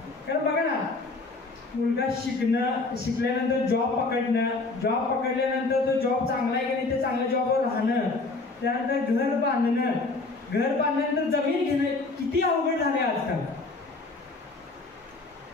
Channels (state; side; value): quieter; right; 3.6 dB